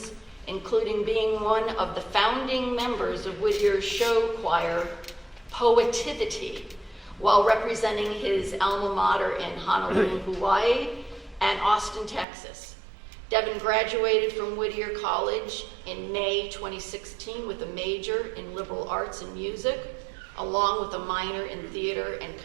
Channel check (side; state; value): left; drops out; at 12.2 s